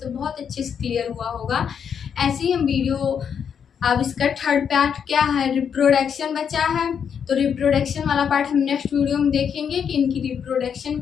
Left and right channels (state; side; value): quieter; right; 7.5 dB